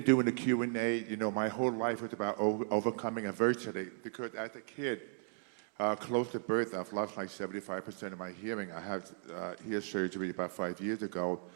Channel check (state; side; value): silent; left; digital silence